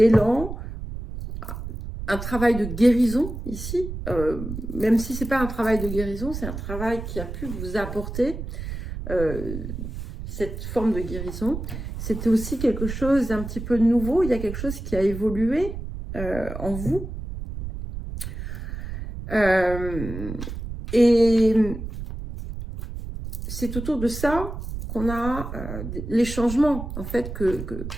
un travail de guérison ici, même si ce n'est pas un travail de guérison, c'est un travail qui a pu vous apporter cette forme de guérison. C'était aussi quelque chose d'un petit peu nouveau, il y a quelque chose qui a évolué en vous. Et c'est autour de ça qu'on a les changements en fait que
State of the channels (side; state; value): right; noise; rumble, 7 dB below the sound